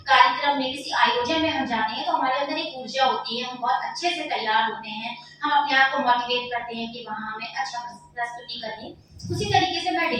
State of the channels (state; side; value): identical; both; correlation 1.00